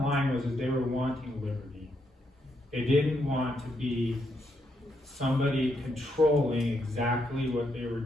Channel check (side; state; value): both; normal; correlation 0.78